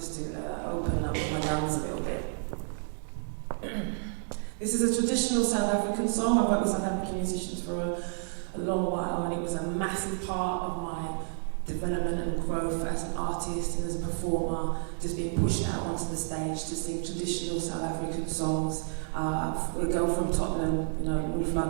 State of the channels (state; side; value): silent; left; 58 dB below the other